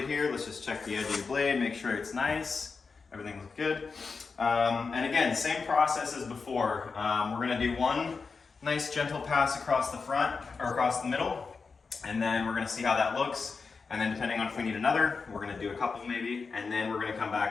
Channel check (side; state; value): right; quieter; 4.8 dB